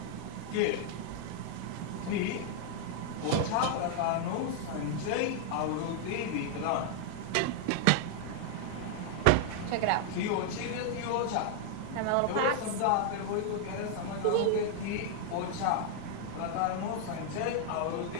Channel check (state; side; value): different; both; correlation 0.00